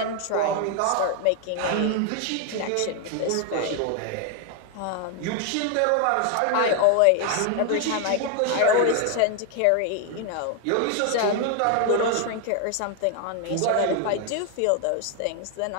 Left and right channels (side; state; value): both; different; correlation 0.01